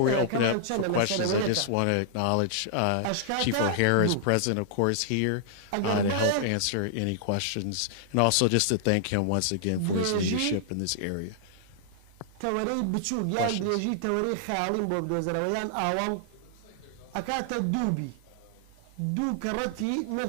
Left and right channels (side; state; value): both; different; correlation -0.01